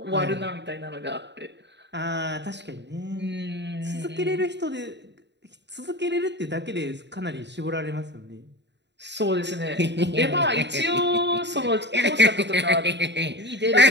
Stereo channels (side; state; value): left; late; 0.51 ms